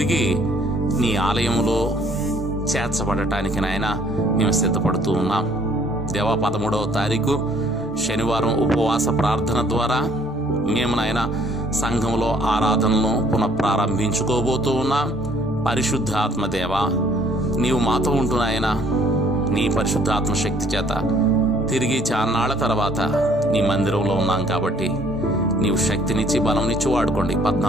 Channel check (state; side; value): normal; both; correlation 0.60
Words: నీ ఆలయంలో చేర్చబడటానికి నాయన మేము సిద్ధపడుతూ ఉన్నాం. దేవా, 13వ తారీఖు శనివారం ఉపవాస ప్రార్థన ద్వారా మేము నాయన సంఘంలో ఆరాధనను పునఃప్రారంభించుకోబోతూ ఉన్నాం. పరిశుద్ధాత్మ దేవా, నీవు మాతో ఉంటున్నాయన నీ పరిశుద్ధాత్మ శక్తి చేత తిరిగి చాన్నాళ్ల తర్వాత నీ మందిరంలో ఉన్నాం. కాబట్టి నీవు శక్తినిచ్చి బలంనిచ్చి వాడుకోండి.